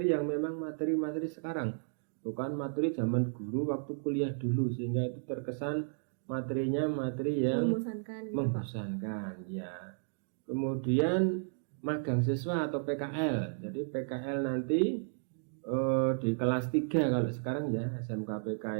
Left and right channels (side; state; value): left; silent; digital silence